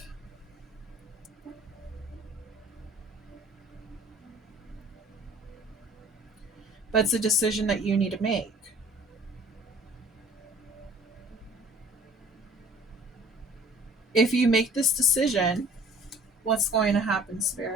But it's a decision that you need to make. If you make this decision, what's going to happen,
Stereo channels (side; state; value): both; normal; correlation 0.50